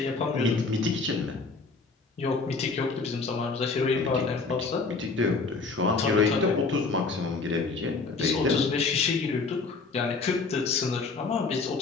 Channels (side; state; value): right; quieter; 4.1 dB